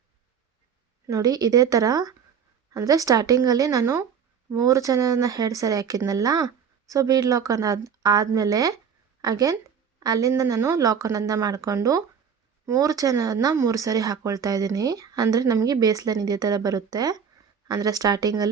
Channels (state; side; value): quieter; left; 7.1 dB